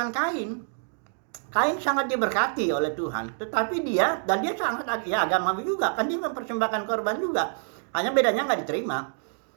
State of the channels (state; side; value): silent; left; digital silence